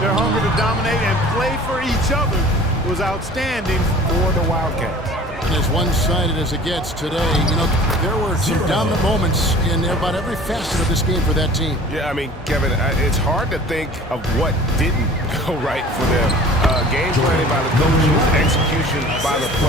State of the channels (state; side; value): normal; both; correlation 0.45